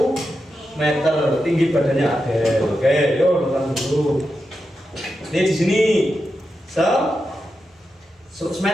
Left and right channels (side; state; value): both; normal; correlation 0.88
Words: meter, tinggi badannya Adel. Oke, yuk datang dulu. Ini di sini 100